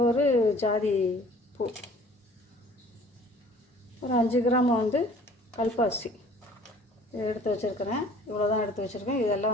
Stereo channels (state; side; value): normal; both; correlation 0.52